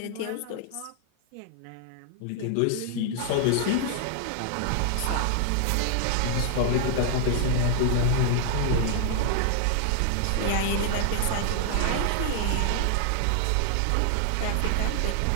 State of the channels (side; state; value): both; different; correlation 0.00